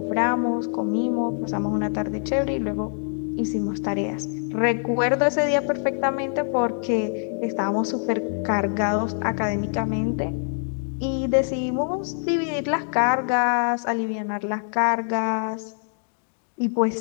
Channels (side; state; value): right; silent; digital silence